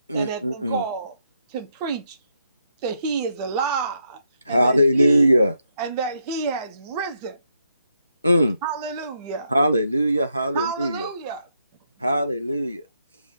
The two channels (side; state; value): both; inverted; correlation -0.79